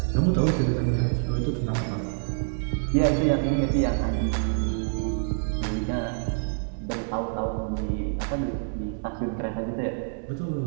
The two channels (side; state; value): left; silent; digital silence